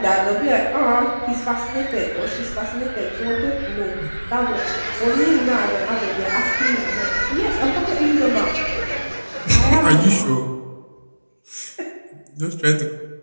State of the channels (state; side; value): inverted; both; correlation -1.00